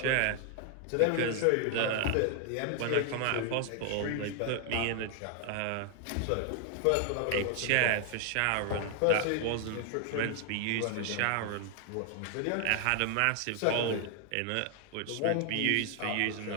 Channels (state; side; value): different; both; correlation 0.00